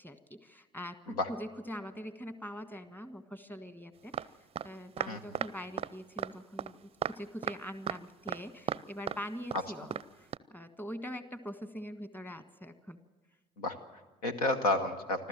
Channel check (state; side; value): normal; both; correlation 0.24